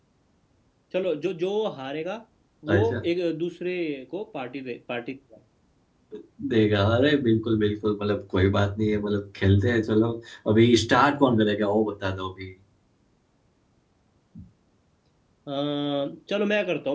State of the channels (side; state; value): both; identical; correlation 1.00